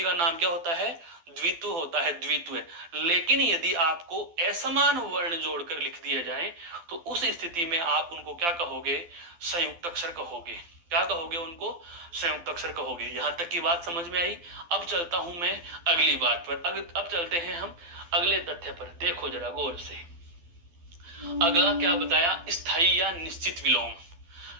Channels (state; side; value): late; left; 12 ms